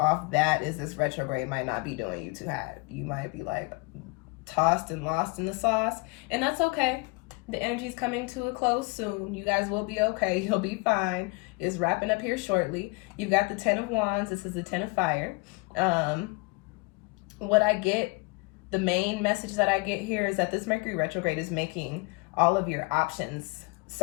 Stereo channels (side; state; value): right; quieter; 28.0 dB